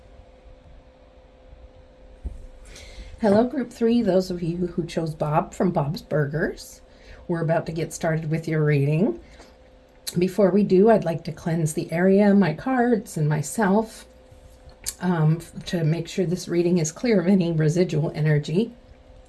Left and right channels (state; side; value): identical; both; correlation 1.00